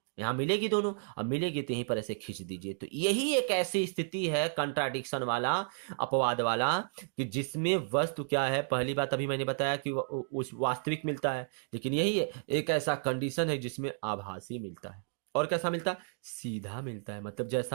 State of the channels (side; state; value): left; silent; digital silence